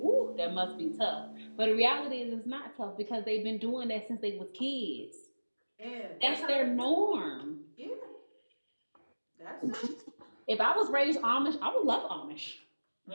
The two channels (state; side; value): inverted; both; correlation -1.00